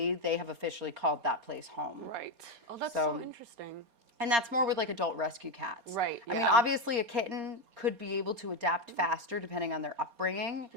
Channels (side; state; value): left; late; 4.3 ms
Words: they have officially called that place home. Right. Oh, that's so interesting. And that's more with like adult rescue cats. Right. I mean, obviously a kitten could be able to adapt faster depending on their upbringing.